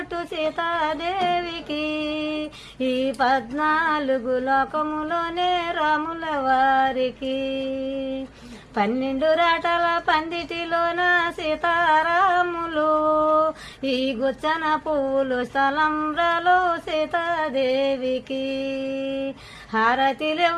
సీతాదేవికి ఈ 14 లోకములోనే రాముల వారికి 12 రాటల పందిటిలోన సీతారాములు ఈ గుచ్చన పువ్వులు స్థలంలో సీతాదేవికి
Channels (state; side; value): identical; both; correlation 1.00